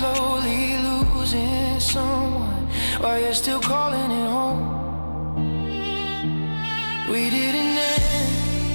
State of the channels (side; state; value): both; inverted; correlation -1.00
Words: losing someone while you're still calling it home. We didn't